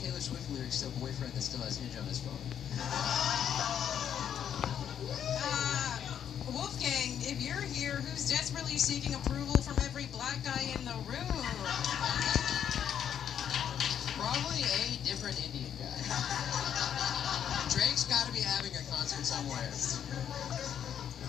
that still has Hinge on his phone. Wolfgang, if you're here, who's desperately seeking approval from every black guy in the room? Probably a different Indian guy. Drake's got to be having a concert somewhere.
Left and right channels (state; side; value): quieter; right; 9.0 dB